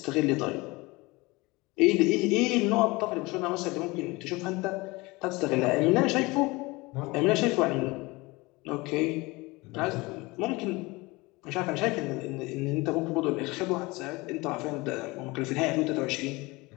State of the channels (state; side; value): quieter; right; 23.3 dB